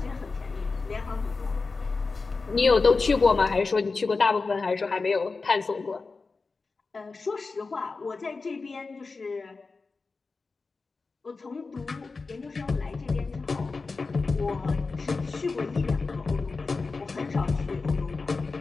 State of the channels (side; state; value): right; quieter; 4.1 dB